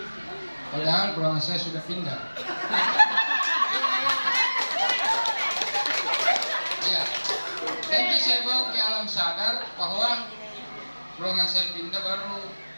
padahal ruangan saya sudah pindah. Ya, nanti saya bawa ke alam sadar bahwa ruangan saya pindah, baru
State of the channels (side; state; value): both; inverted; correlation -1.00